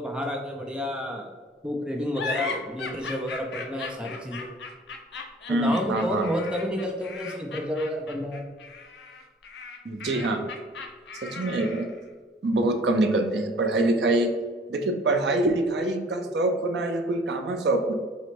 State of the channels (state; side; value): normal; both; correlation 0.50